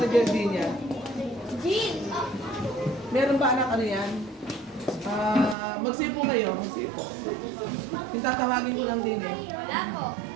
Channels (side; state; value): left; drops out; at 5.6 s